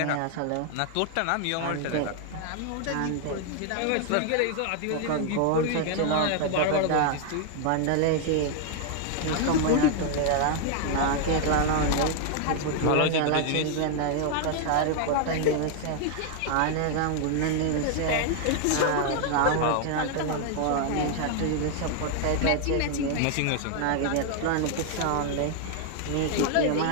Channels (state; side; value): different; both; correlation 0.00